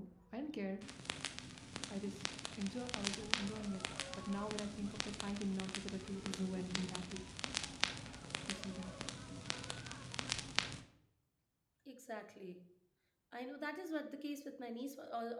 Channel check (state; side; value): identical; both; correlation 1.00